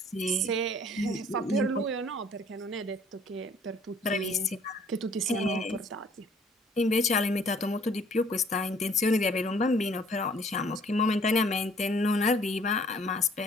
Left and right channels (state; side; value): normal; both; correlation 0.58